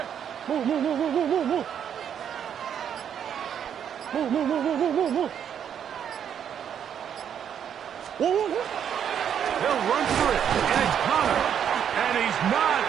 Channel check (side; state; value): left; quieter; 8.7 dB